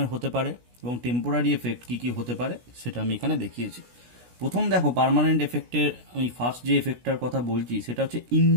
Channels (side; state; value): left; late; 16 ms